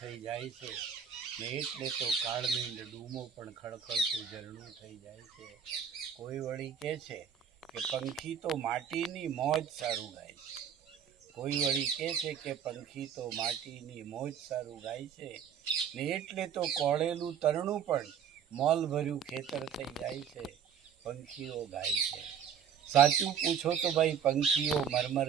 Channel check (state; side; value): quieter; left; 7.8 dB